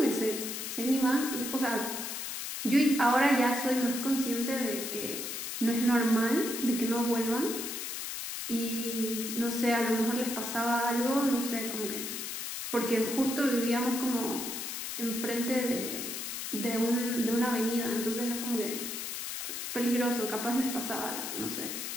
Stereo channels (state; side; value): noise; left; hiss, 5 dB below the sound